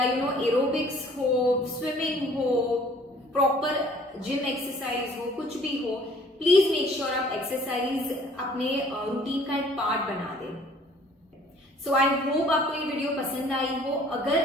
एरोबिक्स हो, स्विमिंग हो, प्रॉपर जिम एक्सरसाइज हो, कुछ भी हो, प्लीज मेक श्योर आप एक्सरसाइज अपने रूटीन का एक पार्ट बना दें। सो आई होप आपको ये वीडियो पसंद आई हो।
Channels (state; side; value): normal; both; correlation 0.55